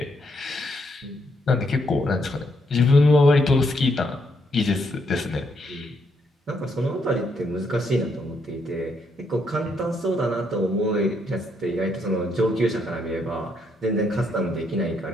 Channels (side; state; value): both; normal; correlation 0.75